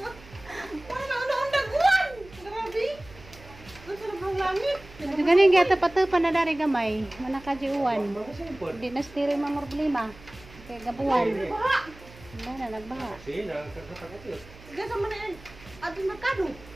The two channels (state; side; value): noise; right; hum, 20 dB below the sound